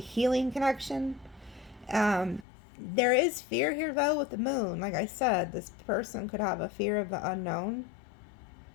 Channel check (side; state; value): right; drops out; at 2.5 s